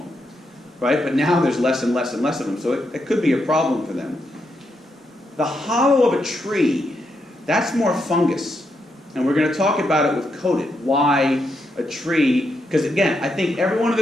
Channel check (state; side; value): normal; both; correlation 0.81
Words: Right? But now there's less and less and less of them, so it could be a problem for them. The hollow of a tree, that's more fungus. And we're going to talk about it with coated. Why a tree, because again, I think everyone in